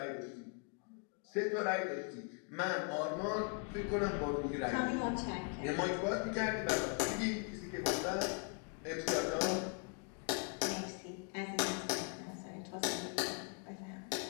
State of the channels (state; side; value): quieter; right; 36.9 dB